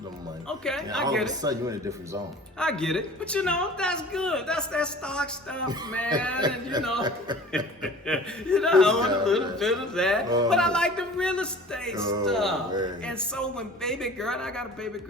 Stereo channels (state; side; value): normal; both; correlation 0.43